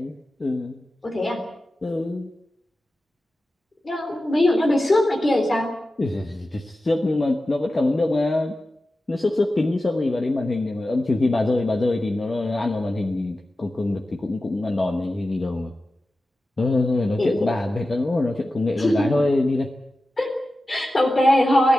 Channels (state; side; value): normal; both; correlation 0.94